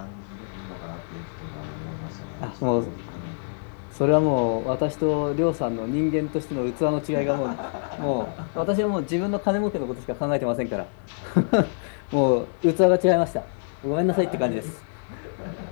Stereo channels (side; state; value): right; silent; digital silence